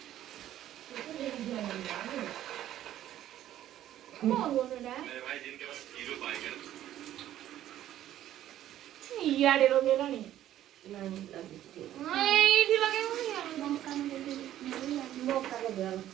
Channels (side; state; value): left; quieter; 12.5 dB